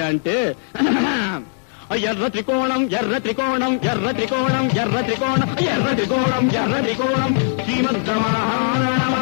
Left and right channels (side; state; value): right; silent; digital silence